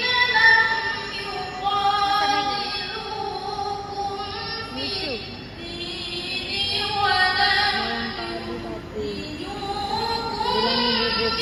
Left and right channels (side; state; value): both; identical; correlation 1.00